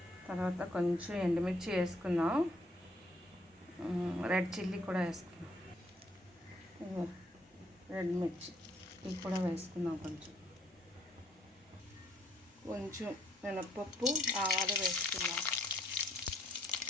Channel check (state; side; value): normal; both; correlation 0.67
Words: తర్వాత కొంచెం ఎండుమిర్చి వేసుకుందాం. రెడ్ చిల్లీ కూడా వేసుకున్నాం. రెడ్ మిర్చి ఇవి కూడా వేసుకుందాం. కొంచెం మినప్పప్పు, ఆవాలు వేసుకుందాం.